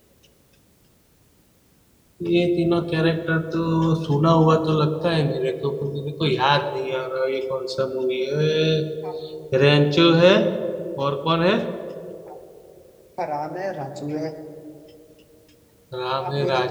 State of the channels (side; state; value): both; identical; correlation 1.00